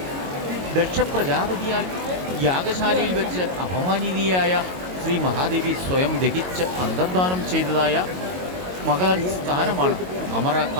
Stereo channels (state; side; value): late; left; 22 ms